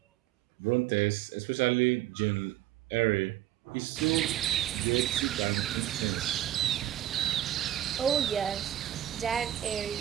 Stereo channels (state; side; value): quieter; left; 12.9 dB